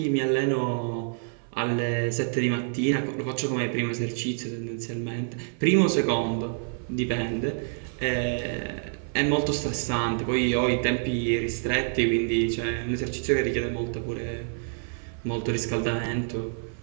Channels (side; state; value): left; silent; 55 dB below the other